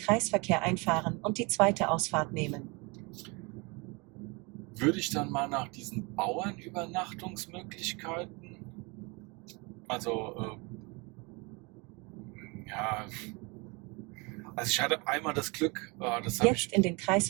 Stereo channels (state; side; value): quieter; left; 28.5 dB